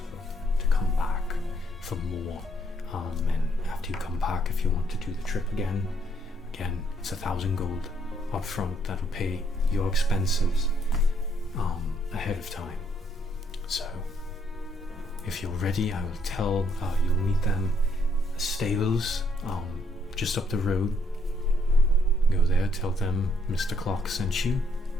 to come back for more. And after you come back, if you want to do the trip again, it's 1,000 gold up front. That'll pay your expenses ahead of time. So if you're ready, I will tell you'll meet them at the stables just up the road. Go there, tell them Mr. Clarke sent you,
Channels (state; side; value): normal; both; correlation 0.71